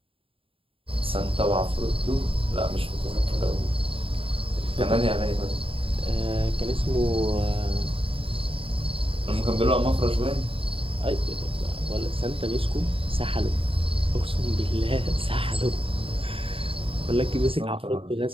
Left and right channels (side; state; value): left; late; 0.27 ms